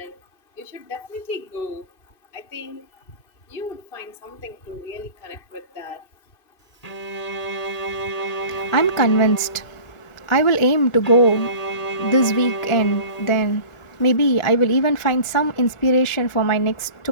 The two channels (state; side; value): late; right; 1.4 ms